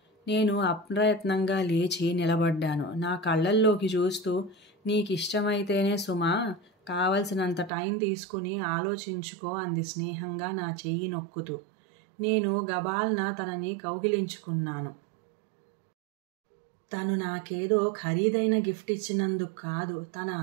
నేను అప్రయత్నంగా లేచి నిలబడ్డాను. నా కళ్ళల్లోకి చూస్తూ, నీకిష్టమైతేనే సుమా, కావలసినంత టైం తీసుకుని ఆలోచించుకో అంది స్నేహంగా నా చెయ్యి నొక్కుతూ. నేను గబాల్న తనని కౌగిలించుకున్నాను. తను నాకేదో ఖరీదైన గిఫ్ట్ ఇచ్చినందుకు కాదు, తన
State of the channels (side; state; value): left; drops out; at 7.7 s